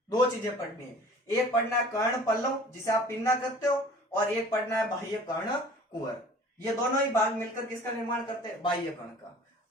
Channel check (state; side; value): normal; both; correlation 0.47